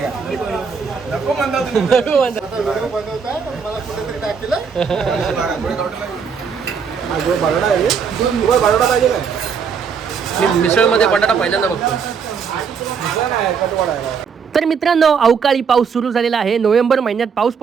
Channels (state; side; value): quieter; left; 6.2 dB